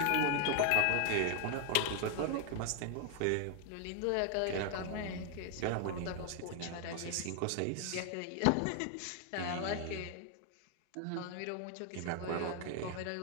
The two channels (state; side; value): different; both; correlation 0.00